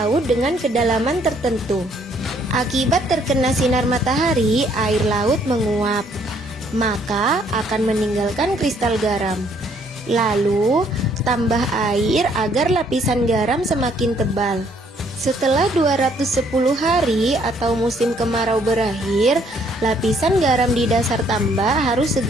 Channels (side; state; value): both; normal; correlation 0.65